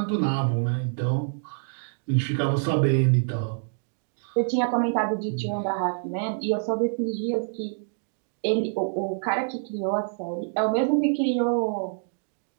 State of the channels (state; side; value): silent; left; digital silence